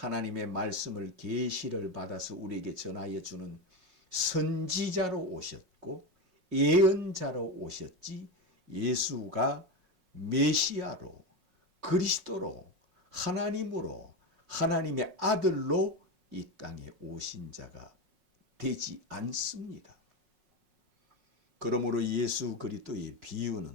말씀을 계시를 받아서 우리에게 전하여 주는 선지자로 오셨고 예언자로 오셨지 예수가 메시아로 그리스도로 하나님으로 하나님의 아들로 이 땅에 오신 자가 되지 않습니다. 그러므로 예수 그리스도의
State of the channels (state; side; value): late; left; 5.5 ms